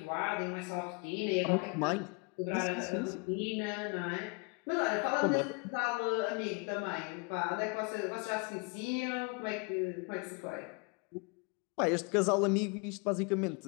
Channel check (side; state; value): right; quieter; 31.7 dB